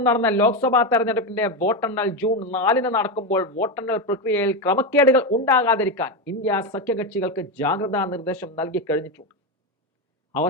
നടന്ന ലോക്സഭാ തെരഞ്ഞെടുപ്പിന്റെ വോട്ടെണ്ണൽ ജൂൺ 4 നടക്കുമ്പോൾ വോട്ടെണ്ണൽ പ്രക്രിയയിൽ ക്രമക്കേടുകൾ ഉണ്ടാകാതിരിക്കാൻ ഇന്ത്യ സഖ്യകക്ഷികൾക്ക് ജാഗ്രതാ നിർദ്ദേശം നൽകി കഴിഞ്ഞിട്ടുണ്ട്.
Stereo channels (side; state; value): both; normal; correlation 0.12